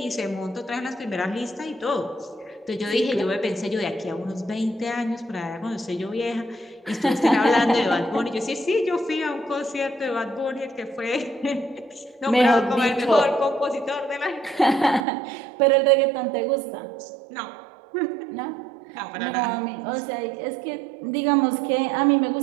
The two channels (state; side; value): drops out; left; at 15.1 s